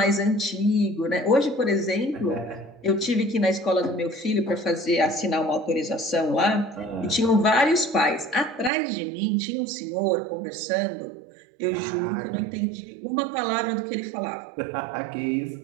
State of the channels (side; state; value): left; drops out; at 8.7 s